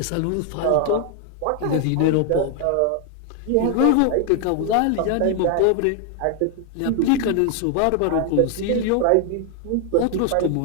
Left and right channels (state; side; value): different; both; correlation 0.00